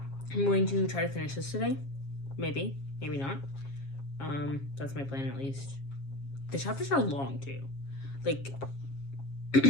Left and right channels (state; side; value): late; right; 7.3 ms